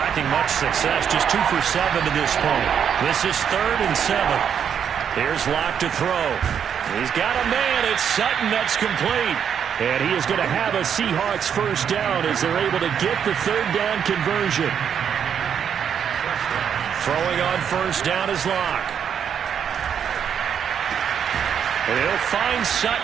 much success, just 2 for 7 to this point. This is 3rd and 7. Here's Locke to throw. He's got a man. It's Sutton. That's complete. And he is going to have a Seahawks first down as they're able to get the third down conversion. Throwing on first down is Locke. And he'll find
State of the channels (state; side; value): quieter; left; 8.1 dB